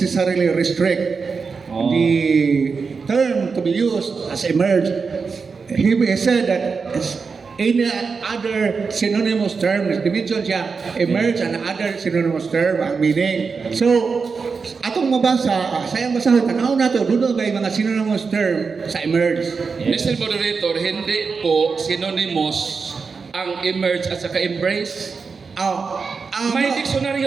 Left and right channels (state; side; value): quieter; left; 5.0 dB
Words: restrict the term to be used as emerge. He said that any other synonymous term, dimension siya, emerge and other synonymous term ang meaning. So, atong mabasa, sayang basahon, tanaw na to, doon may mga synonymous term sa emerge. Mr. Moderator, hindi po synonymous ang emerge at saka embrace. May